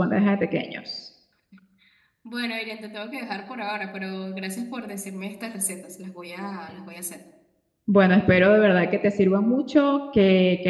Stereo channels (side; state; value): both; identical; correlation 1.00